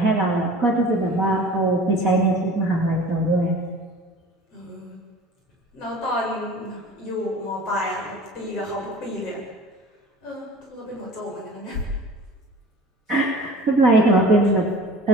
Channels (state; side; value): normal; both; correlation 0.43